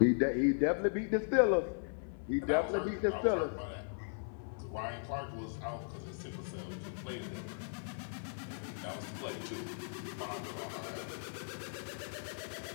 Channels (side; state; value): right; silent; 53 dB below the other